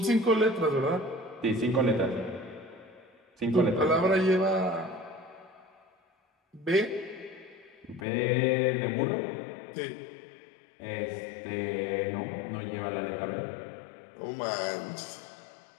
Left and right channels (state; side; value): drops out; right; at 8.1 s